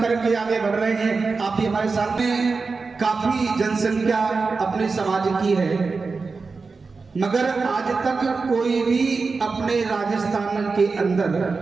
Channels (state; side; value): quieter; left; 4.4 dB